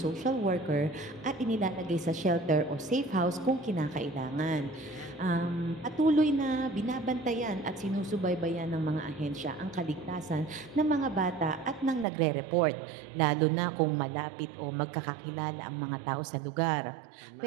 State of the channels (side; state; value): left; drops out; at 12.1 s